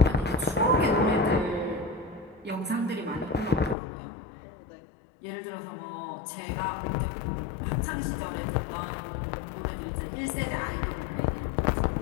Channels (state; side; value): drops out; right; at 3.8 s